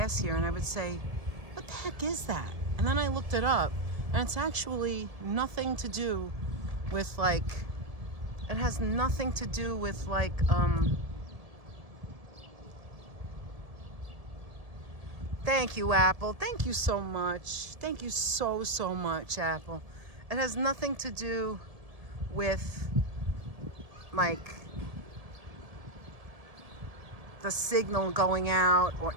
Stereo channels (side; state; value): left; late; 1.7 ms